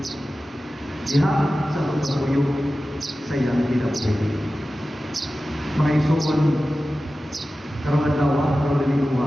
diha sa pagpapuyo sa iyang kinabuhi. Mga isuon, karong adlaw, karong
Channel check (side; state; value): both; normal; correlation 0.95